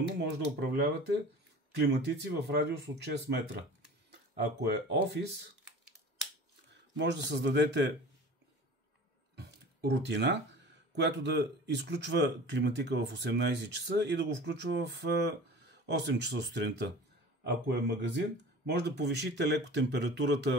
може да управлявате климатици в радиус от 6 метра. Ако е офис, може да създадете рутина, която да изключва климатика в 18 часа и да го включва в 8 часа сутринта. Ако е магазин, може да повишите леко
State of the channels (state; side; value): normal; both; correlation 0.40